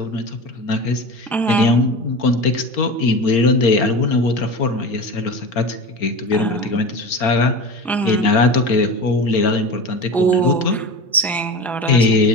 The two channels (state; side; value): normal; both; correlation 0.29